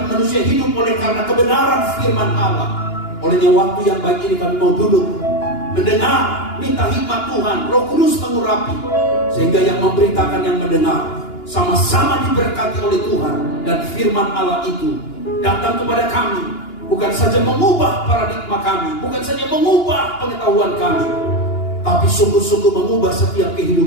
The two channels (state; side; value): late; right; 2.9 ms